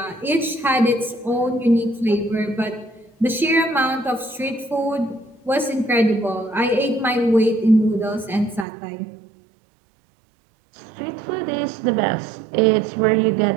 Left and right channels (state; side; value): drops out; left; at 8.7 s